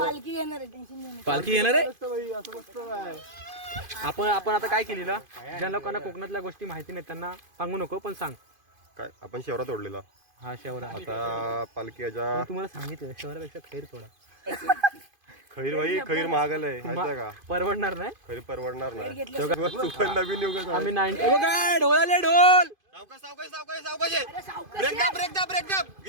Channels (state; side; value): late; left; 2.5 ms